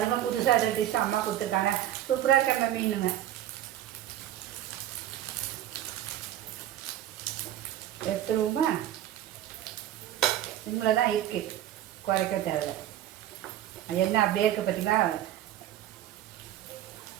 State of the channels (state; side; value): quieter; left; 12.3 dB